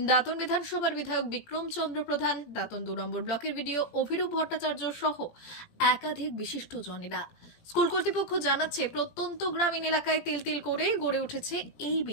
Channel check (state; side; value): late; right; 17 ms